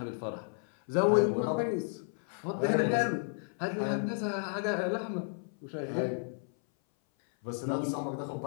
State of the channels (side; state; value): right; silent; 56 dB below the other